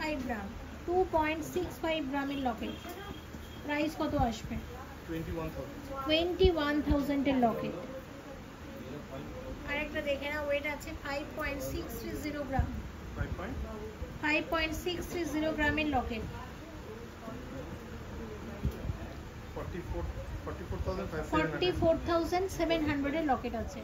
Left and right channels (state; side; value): identical; both; correlation 1.00